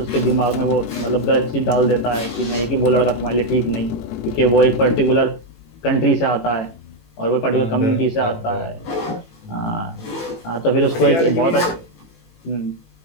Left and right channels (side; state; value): right; late; 18 ms